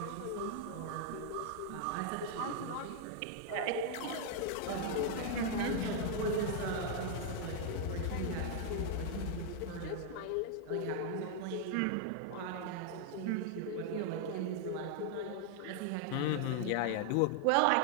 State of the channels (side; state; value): both; different; correlation 0.00